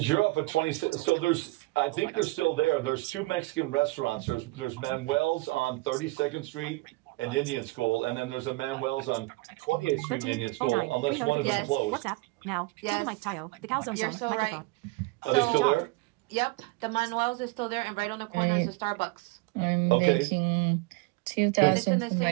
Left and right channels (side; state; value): left; quieter; 23.1 dB